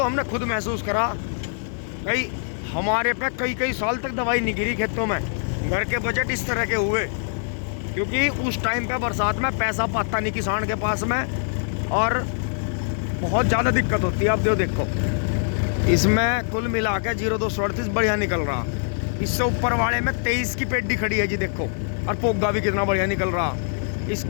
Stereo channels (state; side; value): silent; right; digital silence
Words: हमने खुद महसूस करा, कई हमारे पे कई साल तक दवाई नहीं गिरी खेतों में। घर के बजट इस तरह के हुए क्योंकि उस टाइम पे बरसात में पैसा पाता नहीं किसान के पास में, और बहुत ज़्यादा दिक्कत होती है। अब देखो इसमें कुल मिला के 0238 बढ़िया निकल रहा। इससे ऊपर वाले में 23 की पेडी खड़ी है जी देखो, और पोगा भी कितना बढ़िया निकल रहा।